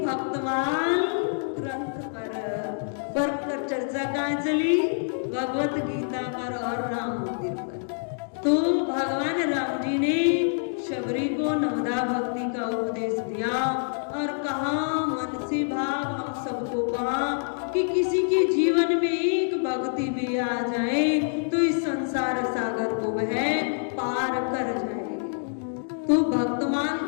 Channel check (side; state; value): right; silent; digital silence